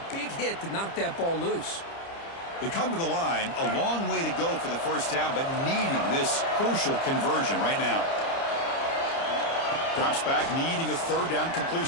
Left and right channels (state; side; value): late; right; 30 ms